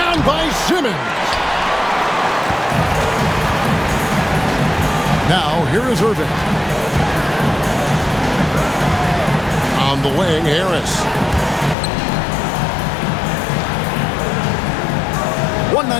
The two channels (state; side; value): drops out; right; at 11.8 s